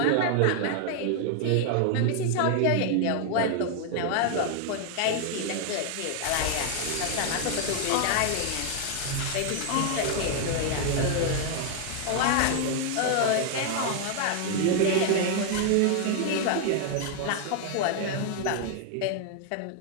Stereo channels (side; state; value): both; different; correlation 0.00